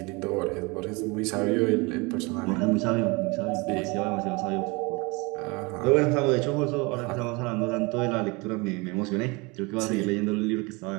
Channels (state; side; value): quieter; left; 26.9 dB